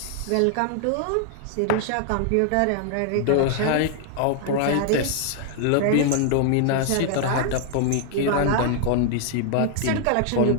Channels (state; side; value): different; both; correlation 0.00